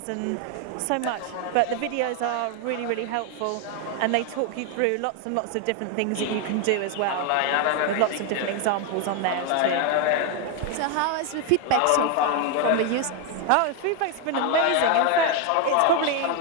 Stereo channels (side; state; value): both; different; correlation 0.01